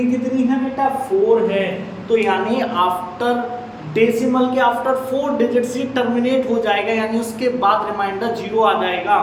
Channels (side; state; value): both; identical; correlation 1.00